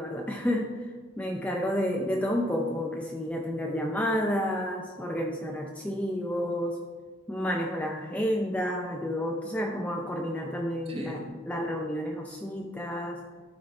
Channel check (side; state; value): both; normal; correlation 0.69